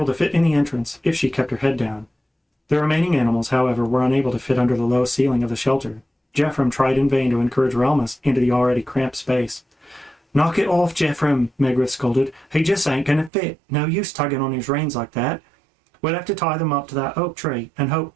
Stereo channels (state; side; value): drops out; left; at 13.3 s